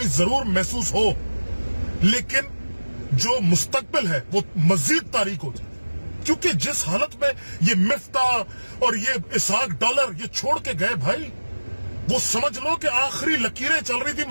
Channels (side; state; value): both; inverted; correlation -1.00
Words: जरूर महसूस हो, लेकिन जो मुस्तकबिल है वो मजीद तारीक हो जाए। क्योंकि जिस हालत में ये मिफ्ता और ये इसहाक डॉलर ये छोड़ के गए भाई, वो समझ लो कि आखिरी लकीरें चल रही थी